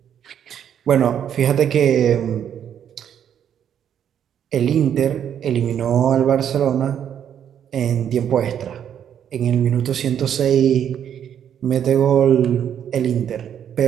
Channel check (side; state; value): left; quieter; 9.2 dB